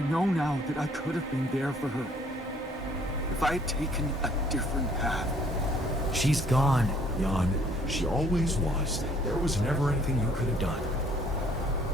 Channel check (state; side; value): normal; both; correlation 0.60